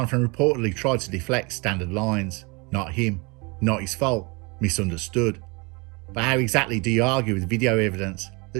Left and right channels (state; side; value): quieter; left; 28.5 dB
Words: reportedly tried to deflect standard lines. Not him, not his fault, misunderstood. But how exactly do you argue with video evidence